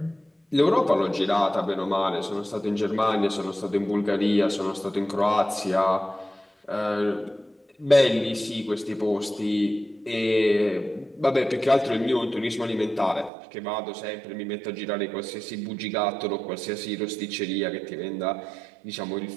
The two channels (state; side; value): drops out; left; at 13.3 s